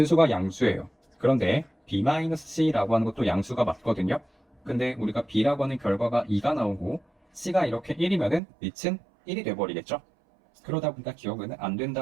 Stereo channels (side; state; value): left; drops out; at 8.4 s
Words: 양수예요. 그런데 b-c라고 하는 것도 양수가 맞거든요. 근데 우리가 b라고 하는 결과가 2가 나오고 c가 이렇게 1이면은 밑은 1이 돼버리겠죠. 그러다 보니까 기억은 안